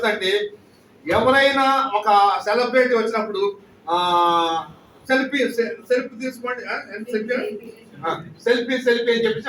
ఎవరైనా ఒక సెలబ్రిటీ వచ్చినప్పుడు సెల్ఫీ తీసుకోండి, సెల్ఫీ అని చెప్పేసి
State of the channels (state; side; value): identical; both; correlation 1.00